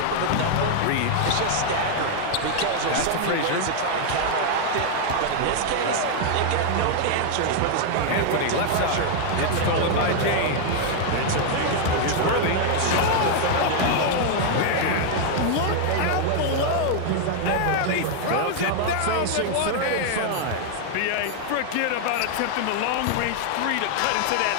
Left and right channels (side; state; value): both; different; correlation 0.00